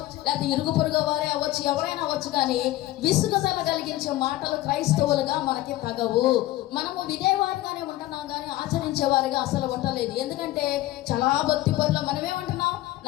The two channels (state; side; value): quieter; right; 16.2 dB